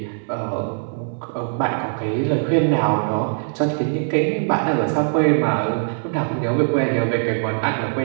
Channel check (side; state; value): left; silent; digital silence